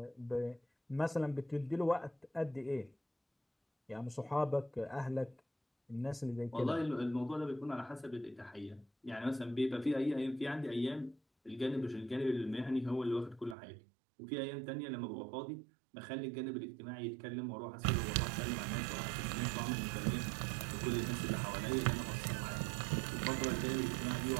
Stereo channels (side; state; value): left; drops out; at 13.6 s